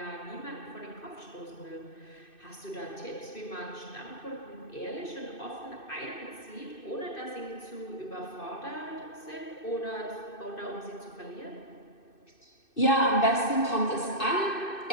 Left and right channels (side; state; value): right; late; 2.6 ms